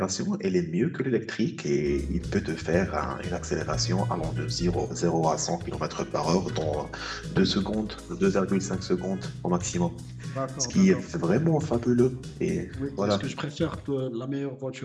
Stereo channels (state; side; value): identical; both; correlation 1.00